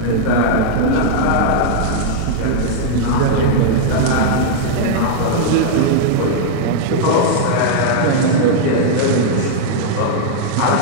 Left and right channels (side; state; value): both; different; correlation -0.01